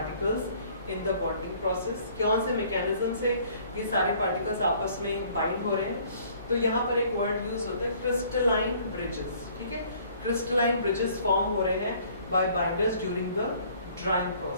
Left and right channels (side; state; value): both; inverted; correlation -0.57